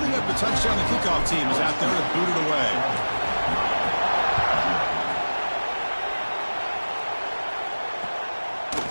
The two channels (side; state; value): both; inverted; correlation -1.00